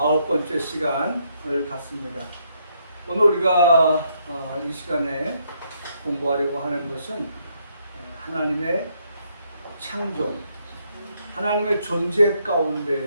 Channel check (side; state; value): both; inverted; correlation -0.73